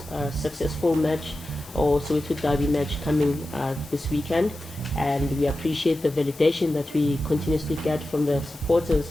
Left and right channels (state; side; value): noise; left; hiss, 21 dB below the sound